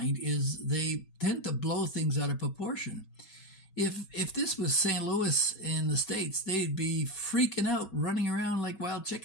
is they tend to blow things out of proportion. If this was St. Louis in the States, they'd be freaking out, running around like wild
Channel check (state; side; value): late; right; 4.2 ms